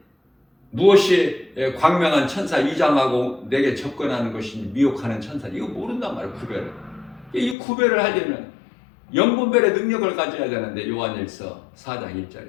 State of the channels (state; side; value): drops out; right; at 7.6 s